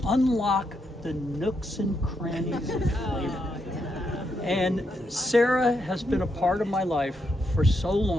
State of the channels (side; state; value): both; normal; correlation 0.80